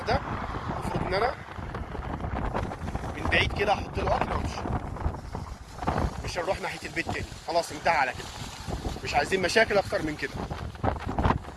ده، المفروض ان انا من بعيد كده احط له اكل وامشي. مش هنروح ناحيه البيت تاني، خلاص انتهى على كده. مش عايزين مشاكل اكتر من كده.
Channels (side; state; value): both; identical; correlation 1.00